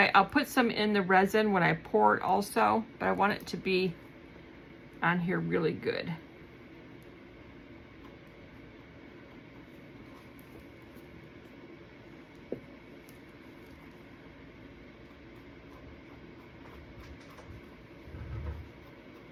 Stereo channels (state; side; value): identical; both; correlation 1.00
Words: I'll put some in the resin when I pour it also, but I want it to be on here really good.